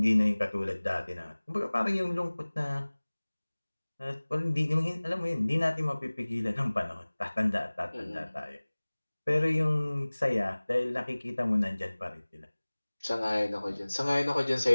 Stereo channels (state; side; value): inverted; both; correlation -1.00